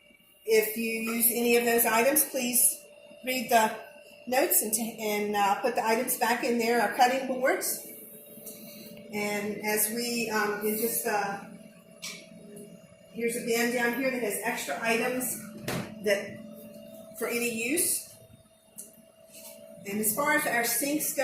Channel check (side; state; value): both; identical; correlation 1.00